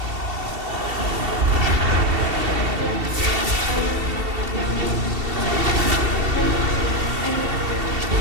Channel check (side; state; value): left; late; 2.7 ms